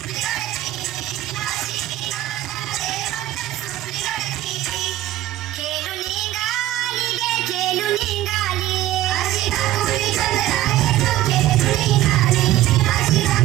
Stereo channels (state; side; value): quieter; left; 14.6 dB